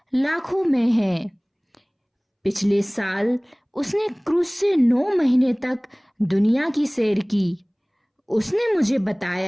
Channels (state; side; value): identical; both; correlation 1.00